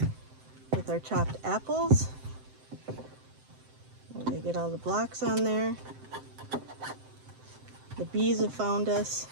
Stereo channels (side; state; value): left; late; 7.7 ms